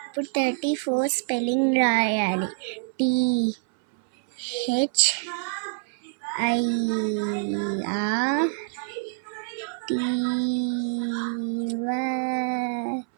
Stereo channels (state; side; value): silent; left; 61 dB below the other